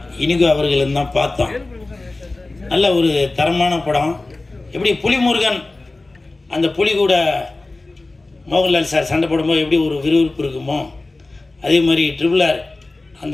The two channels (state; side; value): quieter; right; 3.1 dB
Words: இனிகோ அவர்களும் தான் பார்த்தோம். நல்ல ஒரு தரமான படம். எப்படி புலிமுருகன் அந்த புலி கூட மோகன்லால் சார் சண்டை போடும்போது எப்படி ஒரு விறுவிறுப்பு இருக்குமோ, அதே மாதிரி ட்ரிபிள் ஆர்